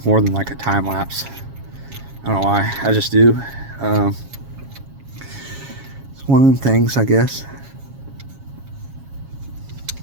more than like a time lapse. I don't know why, I just do. It's one of the things, I guess.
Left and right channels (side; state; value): left; late; 7.3 ms